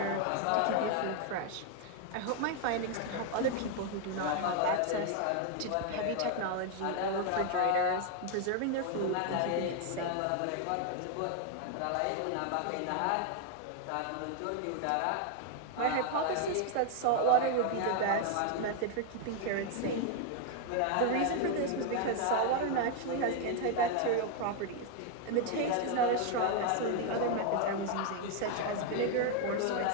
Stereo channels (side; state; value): both; different; correlation 0.00